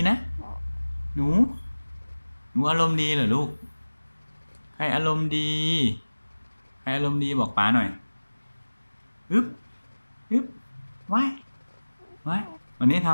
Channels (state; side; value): inverted; both; correlation -1.00